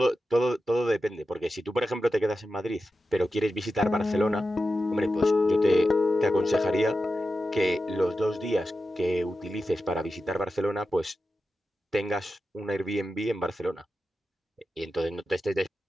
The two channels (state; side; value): normal; both; correlation 0.91